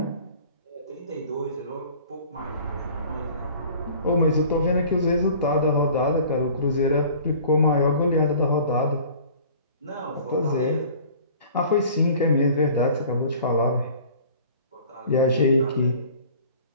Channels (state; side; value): inverted; both; correlation -0.47